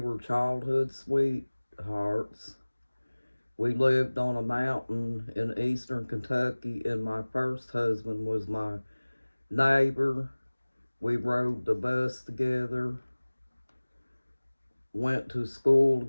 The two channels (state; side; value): inverted; both; correlation -1.00